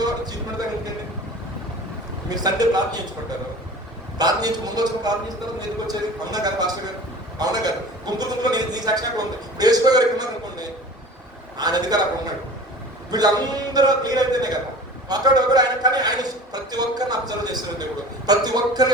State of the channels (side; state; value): both; normal; correlation 0.40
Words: మీరు సండే ప్రార్థన చేయించుకుంటారు. ప్రార్థన చేయించి ముందు వచ్చి ప్రార్థన చేస్తారు. మీరు ఎందుకు వచ్చేది? అవునా గారు పాస్టర్ గారు, అవునా గారు గుంపులో నీ సాక్షి ఉంది. వేసుకో గారు ఉన్నారు అనుకోండి, ఆయన అధికారు అక్కడ ఉన్నాడు. వీళ్ళందరూ క్లియర్ అయితేనే కదా అక్కడ ఒకరు ఆయన. కానీ ఆయన ప్రతి ఒక్కరిని అబ్జర్వ్ చేస్తున్న దేవుడు, ప్రతి ఒక్కరి